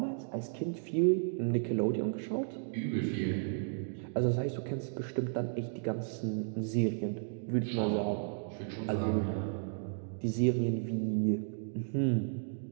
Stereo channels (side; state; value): left; silent; digital silence